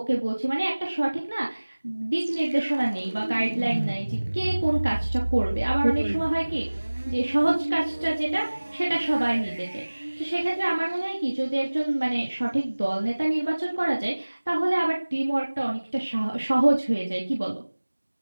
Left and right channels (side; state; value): both; inverted; correlation -1.00